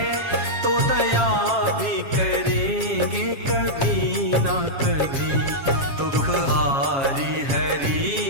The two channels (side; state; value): left; late; 7.3 ms